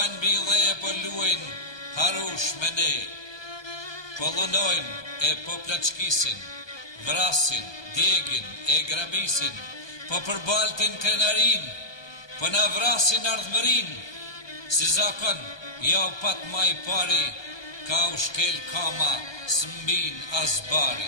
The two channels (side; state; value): right; late; 1.2 ms